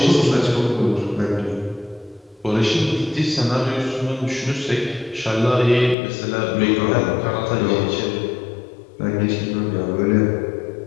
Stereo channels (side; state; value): right; drops out; at 6.0 s